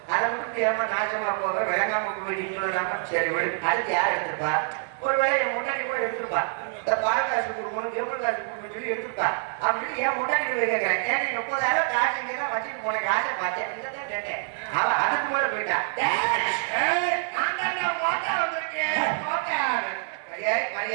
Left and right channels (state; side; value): silent; left; 60 dB below the other